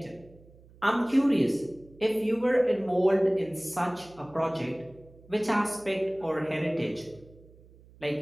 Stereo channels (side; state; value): right; noise; hum, 25 dB below the sound